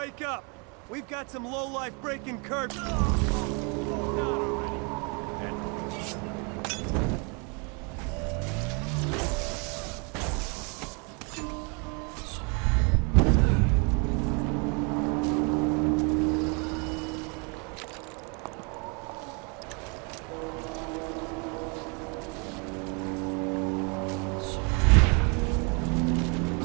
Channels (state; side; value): quieter; left; 33.7 dB